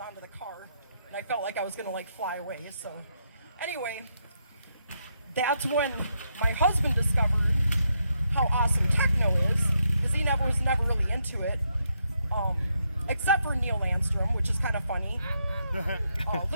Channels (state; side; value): inverted; both; correlation -0.79